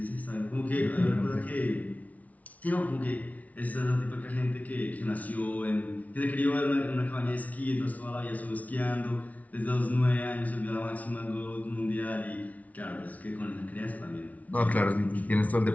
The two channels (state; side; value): late; right; 0.070 ms